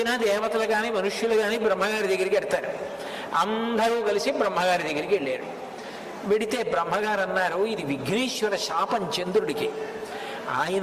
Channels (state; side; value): identical; both; correlation 1.00